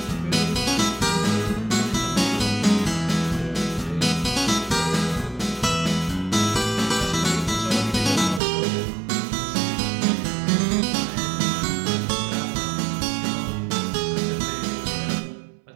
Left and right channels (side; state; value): left; drops out; at 8.4 s